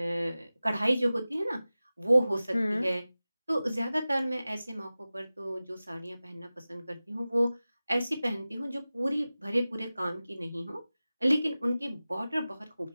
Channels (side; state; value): both; inverted; correlation -0.96